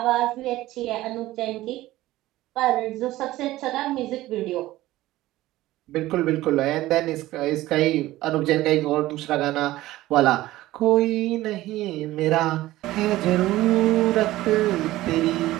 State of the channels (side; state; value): left; quieter; 16.5 dB